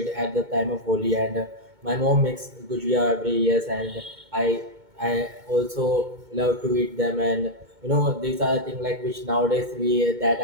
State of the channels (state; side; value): late; left; 2.2 ms